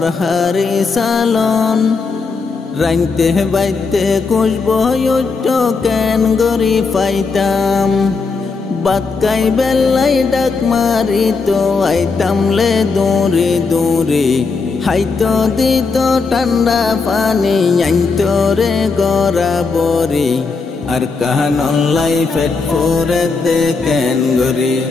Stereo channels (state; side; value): quieter; right; 4.5 dB